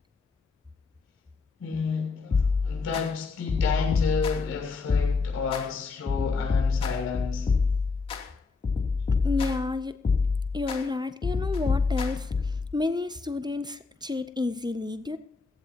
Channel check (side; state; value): right; quieter; 4.3 dB